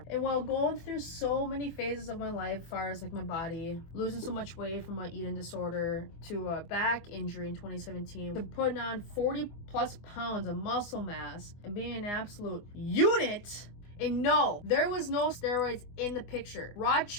And while going through so many phases of my life, as far as like my body, losing so much weight from my eating disorder, to a back injury in 2017, to putting on 40 plus pounds of muscle mass and being an absolute unit. And no, there was no steroids in the picture. Raw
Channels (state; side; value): late; right; 24 ms